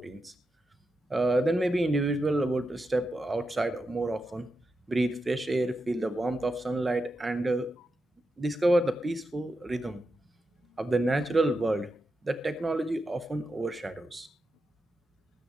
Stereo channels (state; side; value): normal; both; correlation 0.88